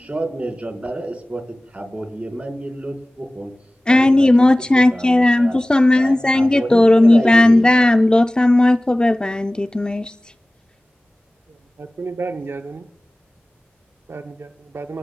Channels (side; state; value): both; normal; correlation 0.98